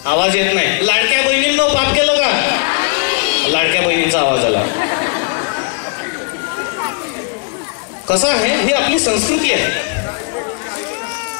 आवाज येत नाही. लाडक्या बहिणींनो पाप केलं का? लाडक्या बहिणींचा आवाज आला. कसं आहे, ही आपली संस्कृती आहे.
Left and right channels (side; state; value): right; quieter; 37.3 dB